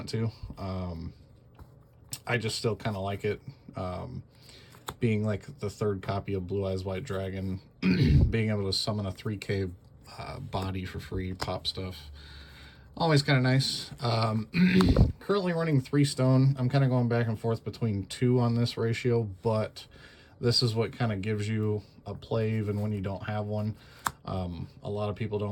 to. I just still kind of like it, being like the 3rd copy of Blue Eyes White Dragon, being able to summon a 3K body for free, pop stuff. Always kind of nice. Currently running 3 stone. I'm kind of going back and forth between 2 on this ratio, but this is what kind of gives you a play even when you don't have one. A lot of people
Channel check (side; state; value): both; identical; correlation 1.00